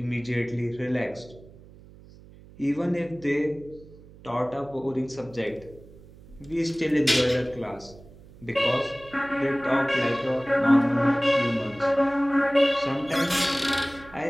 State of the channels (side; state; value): right; noise; hum, 22 dB below the sound